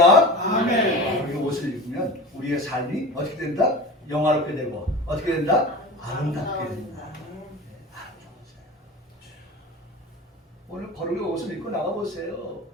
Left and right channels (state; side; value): normal; both; correlation 0.33